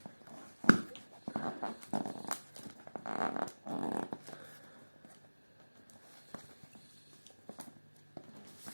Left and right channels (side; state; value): both; inverted; correlation -1.00